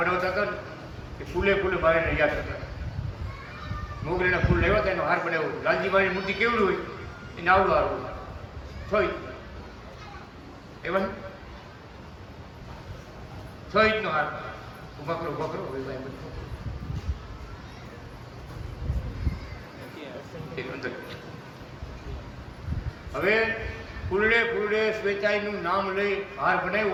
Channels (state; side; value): identical; both; correlation 1.00